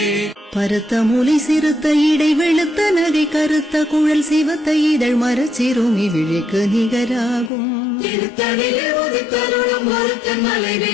பருத்த மூலை சிறுத்த இடை வெளுத்த நகை கருத்த குழல் சிவத்த இதழ் மரச்சிறுமி விழிக்கு நிகராகும் திருத்தணிலே உதித்தருளும் ஒருத்தன் மலை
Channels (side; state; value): right; drops out; at 7.5 s